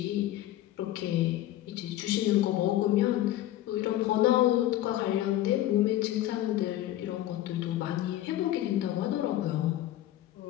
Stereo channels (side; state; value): right; quieter; 14.0 dB